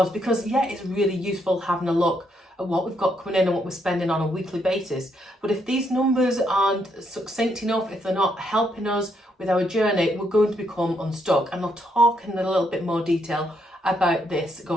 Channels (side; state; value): both; normal; correlation 0.76